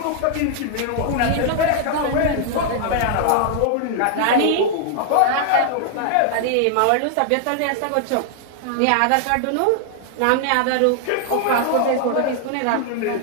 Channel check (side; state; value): both; different; correlation 0.00